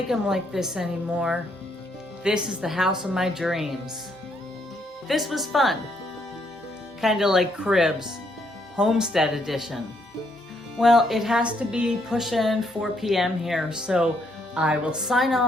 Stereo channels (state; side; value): normal; both; correlation 0.73